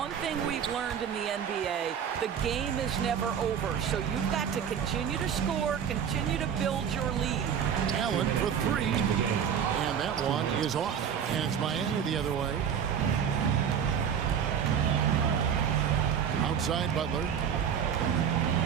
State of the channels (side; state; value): left; quieter; 8.1 dB